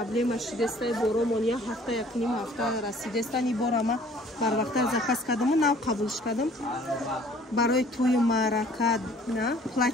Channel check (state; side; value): normal; both; correlation 0.55